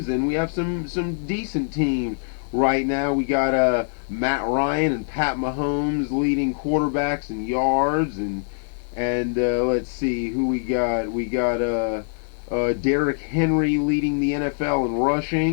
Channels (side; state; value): right; silent; 63 dB below the other